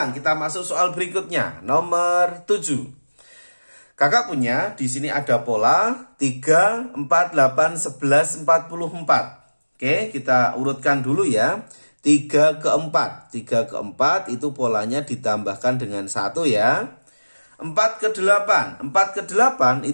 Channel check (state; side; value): inverted; both; correlation -1.00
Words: kita masuk soal berikutnya, nomor 7. Kakak punya di sini ada pola 3, 4, 8, 11, 44. Oke, kita urutkan dulu ya. 3 ke 4. 3 ke 4 itu polanya ditambahkan dengan 1 ya. 4 ke 8. 4 ke 8